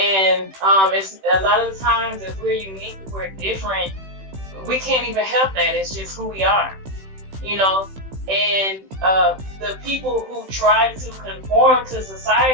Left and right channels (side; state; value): left; late; 16 ms